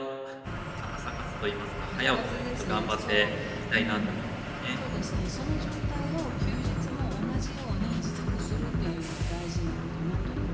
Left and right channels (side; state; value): both; identical; correlation 1.00